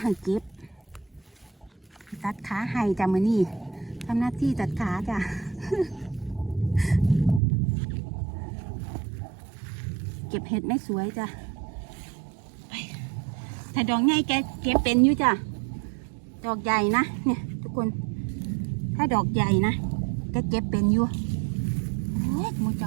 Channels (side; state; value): left; drops out; at 7.4 s